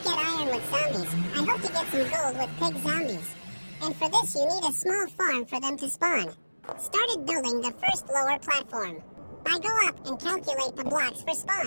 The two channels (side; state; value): both; inverted; correlation -1.00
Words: get iron with zombies, I hope to get some gold with pig zombies. And for this you need a small farm for them to spawn. Started building the first lower platform. I go up and calculate the blocks for